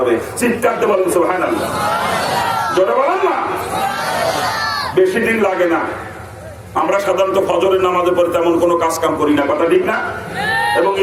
চিৎকার দিয়ে বলেন সুবহানাল্লাহ। জোরে বলেন না। বেশি দিন লাগে না। আমরা সাধারণত ফজরের নামাজের পরে তেমন কোনো কাজ কাম করি না, কথা ঠিক না? এবং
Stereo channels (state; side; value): identical; both; correlation 1.00